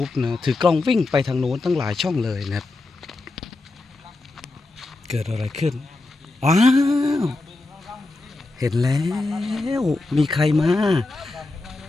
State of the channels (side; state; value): right; quieter; 3.2 dB